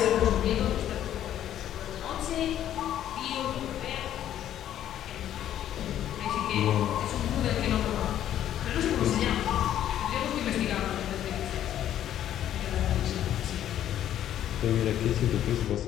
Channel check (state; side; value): quieter; right; 11.3 dB